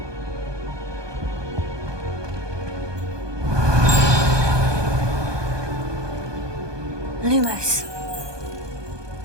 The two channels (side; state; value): left; late; 1.2 ms